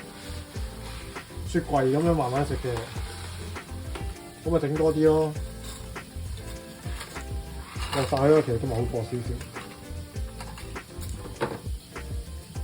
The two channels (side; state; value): both; identical; correlation 1.00